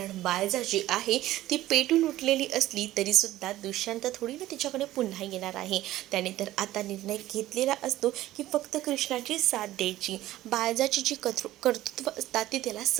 बायजा जी आहे ती पेटून उठलेली असली तरीसुद्धा दुष्यंत थोडी ना तिच्याकडे पुन्हा येणार आहे. त्याने तर आता निर्णय घेतलेला असतो की फक्त कृष्णाची साथ द्यायची. बायजाची जी कर्तृत्व असतात ती त्याला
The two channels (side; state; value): left; quieter; 15.1 dB